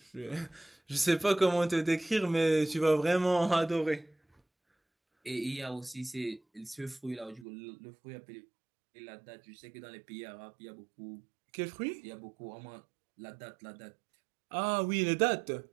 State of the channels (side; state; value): left; drops out; at 7.5 s